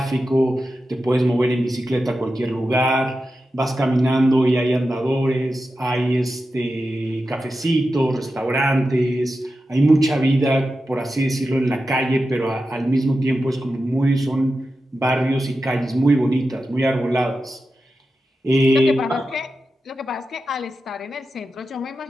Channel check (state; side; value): normal; both; correlation 0.91